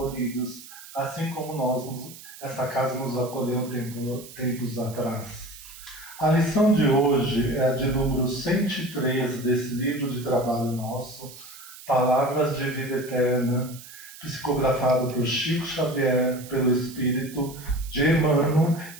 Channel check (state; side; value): noise; right; hiss, 17 dB below the sound